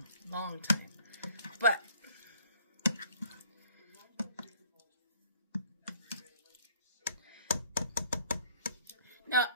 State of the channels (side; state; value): both; inverted; correlation -0.55